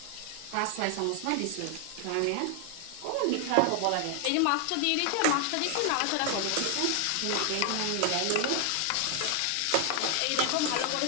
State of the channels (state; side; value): different; both; correlation 0.00